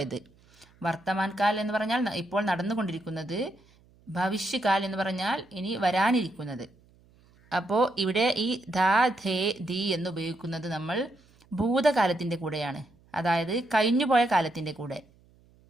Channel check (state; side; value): noise; right; hum, 30 dB below the sound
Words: വർത്തമാൻകാൽ എന്ന് പറഞ്ഞാൽ ഇപ്പോൾ നടന്നുകൊണ്ടിരിക്കുന്നത്, ഭവിഷ്യകാൽ എന്ന് പറഞ്ഞാൽ ഇനി വരാനിരിക്കുന്നത്. അപ്പോൾ ഇവിടെ ഈ ധ, ഥേ, ധി എന്ന് ഉപയോഗിക്കുന്നത് നമ്മൾ ഭൂതകാലത്തിൻ്റെ കൂടെയാണ്, അതായത് കഴിഞ്ഞുപോയ കാലത്തിൻ്റെ കൂടെ.